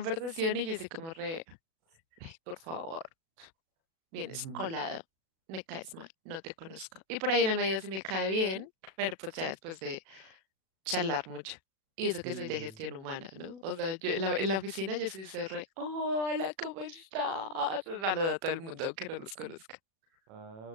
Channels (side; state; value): left; late; 37 ms